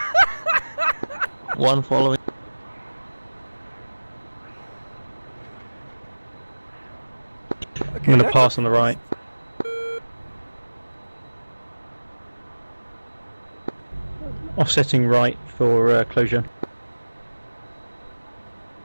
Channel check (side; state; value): both; inverted; correlation -1.00